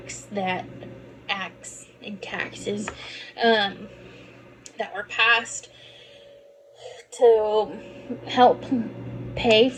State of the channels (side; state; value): both; identical; correlation 1.00